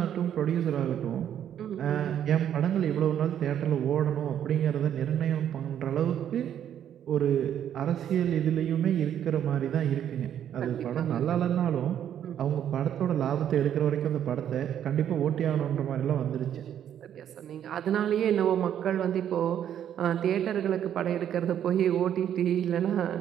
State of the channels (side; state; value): left; quieter; 9.9 dB